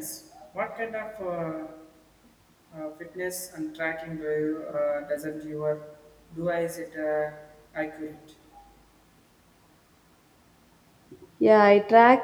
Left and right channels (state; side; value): identical; both; correlation 1.00